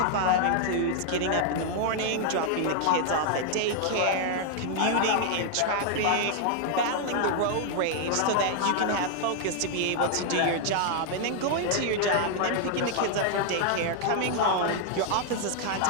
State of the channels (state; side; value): different; both; correlation 0.00